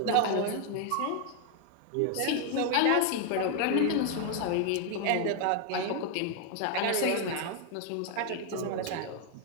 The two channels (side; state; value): both; different; correlation 0.00